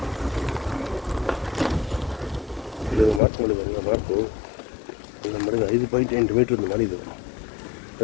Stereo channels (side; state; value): right; drops out; at 3.2 s